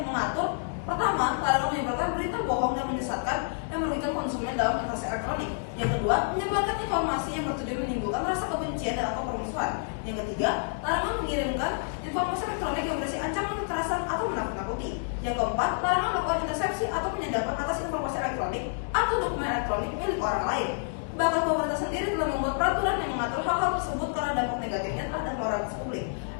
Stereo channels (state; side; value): silent; right; digital silence